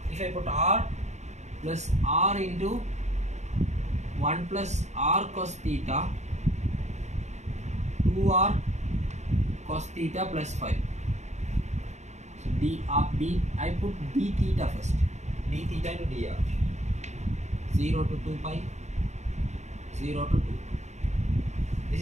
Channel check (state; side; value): late; left; 0.33 ms